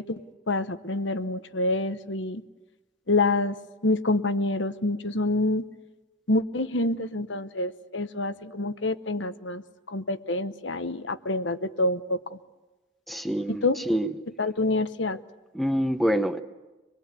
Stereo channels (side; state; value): both; normal; correlation 0.20